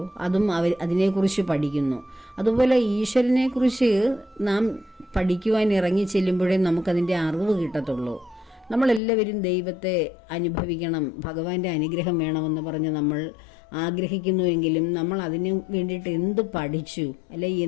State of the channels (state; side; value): drops out; right; at 9.0 s